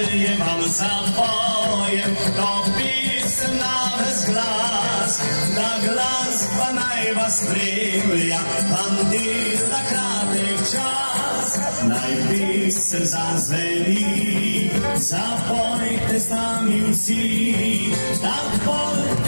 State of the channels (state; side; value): inverted; both; correlation -1.00